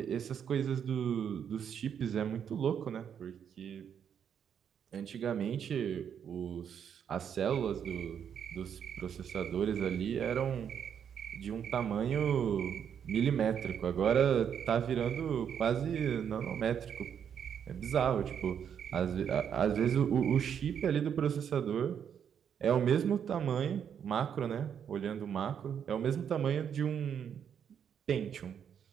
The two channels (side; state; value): left; quieter; 8.2 dB